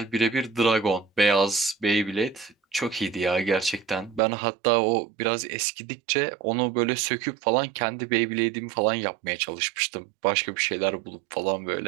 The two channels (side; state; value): left; drops out; at 4.2 s